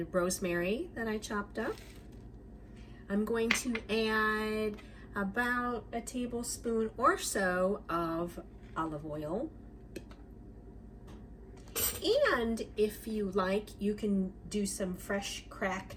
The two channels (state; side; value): identical; both; correlation 1.00